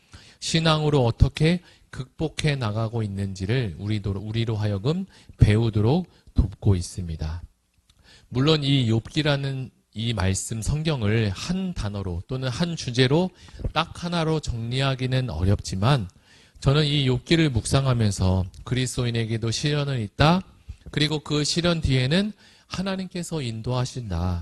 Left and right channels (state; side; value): identical; both; correlation 1.00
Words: 신앙으로 어떻게 극복해 나가고 있는지를 우리로 하여금 배우도록 돕고 있습니다. 물론 이 욥기라는 이 말씀 성경을 한 단어로 또는 한 주제로 딱 하나로 정리하기는 어렵지만 저는 이 욥기를 묵상하면서 그리스도인에게도 시련은 있다. 그리고 그 시련 뒤에는 하나님께서